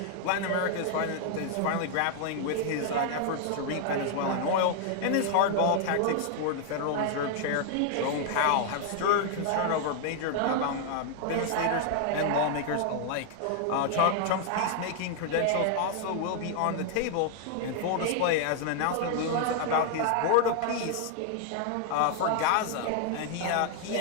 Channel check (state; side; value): different; both; correlation 0.00